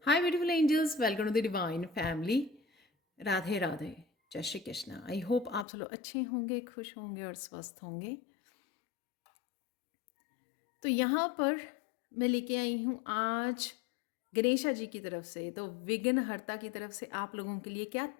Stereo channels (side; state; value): right; drops out; at 5.7 s